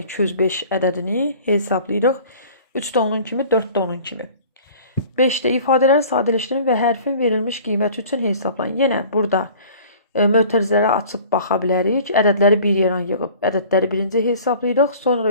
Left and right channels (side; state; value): both; inverted; correlation -0.47